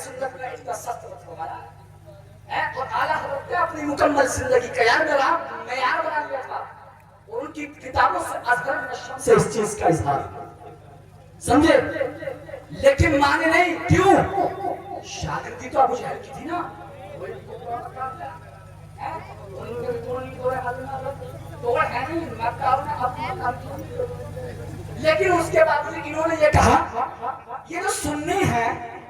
میں اتنا سخت رکھ ہمارا ہے، اور اعلیٰ حضرت نے اپنی مکمل زندگی کا معیار بنا لیا تھا، اور ان کی کتابوں سے ازہر نشم سے اس چیز کا اظہار سمجھے، لیکن مانے نہیں، کیوں؟ شاگردی تو ابو جہل کی تھی نا، لیکن اس کے بعد انہوں نے یہ کہا یہ جو سنی ہے،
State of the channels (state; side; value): identical; both; correlation 1.00